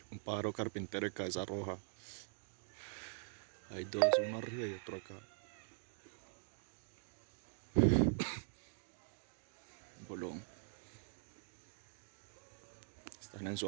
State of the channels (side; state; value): left; silent; digital silence